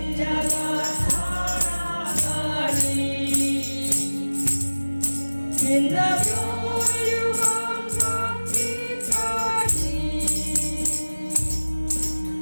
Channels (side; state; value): both; inverted; correlation -1.00